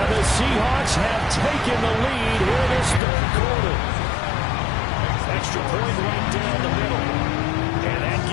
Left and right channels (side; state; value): right; drops out; at 3.0 s